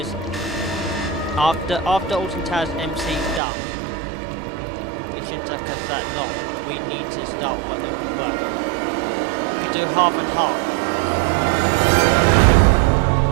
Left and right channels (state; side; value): drops out; left; at 3.4 s